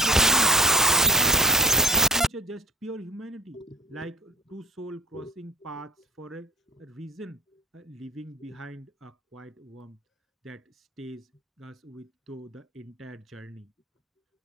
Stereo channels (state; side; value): normal; both; correlation 0.38